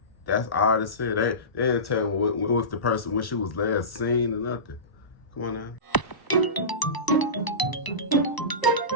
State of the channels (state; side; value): late; right; 1.0 ms